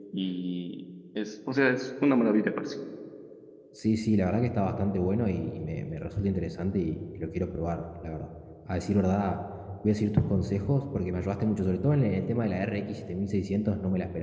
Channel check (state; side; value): identical; both; correlation 1.00